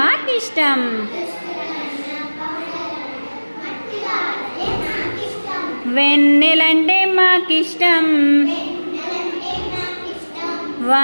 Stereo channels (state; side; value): inverted; both; correlation -1.00